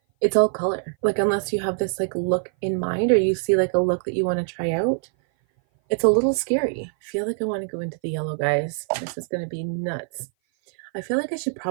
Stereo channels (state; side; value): silent; left; 57 dB below the other